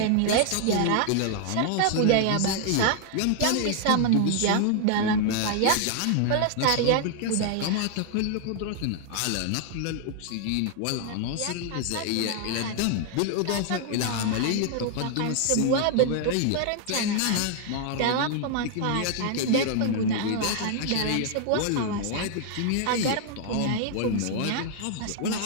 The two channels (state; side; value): different; both; correlation 0.00